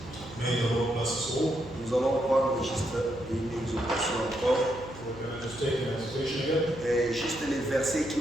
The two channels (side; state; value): right; noise; hum, 16 dB below the sound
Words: May the Lord bless us all. Nous allons prendre juste une exhortation encore. We're going to just take an exhortation again. Et juste les versets qui